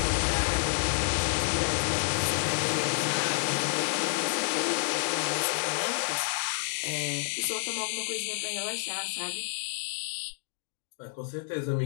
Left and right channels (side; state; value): right; silent; digital silence